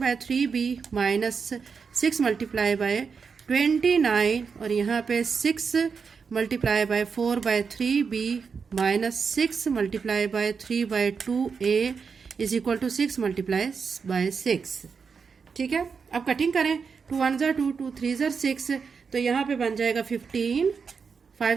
minus 6 multiply by 29 और यहाँ पे 6 multiply by 4/3b minus 6 multiply by 3/2a is equal to 6 multiply by 6। ठीक है, अब कटिंग करें। 2 1 ज़ा 2, 2 3 ज़ा 6, तो यहाँ पे बन जाएगा 15,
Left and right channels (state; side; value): quieter; left; 5.7 dB